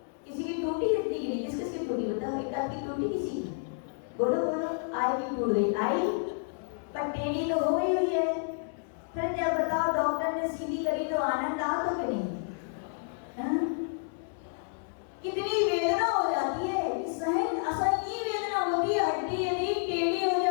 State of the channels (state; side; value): silent; right; digital silence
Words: किसी की टूटी हड्डी की नहीं, किसकी टूटी बताओ? एक आध की टूटी किसी की? बोलो बोलो, आई की टूट गई, आई पर टेढ़ी तो हो गई हुई है। फिर जब बताओ डॉक्टर ने सीधी करी तो आनंद आओ तो कि नहीं? कितनी वेदना हो जाती है, सहन असहनीय वेदना होती है। हड्डी